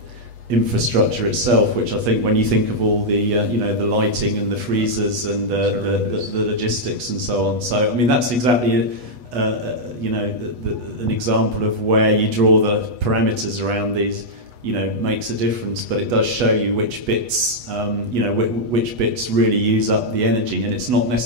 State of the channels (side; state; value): left; late; 8.2 ms